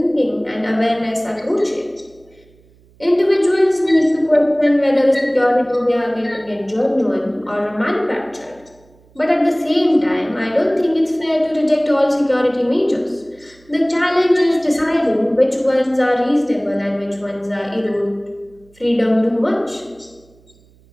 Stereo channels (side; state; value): right; noise; hum, 30 dB below the sound